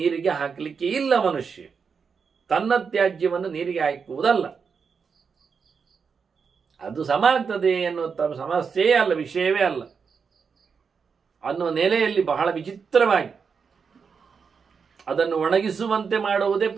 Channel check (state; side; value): quieter; left; 5.8 dB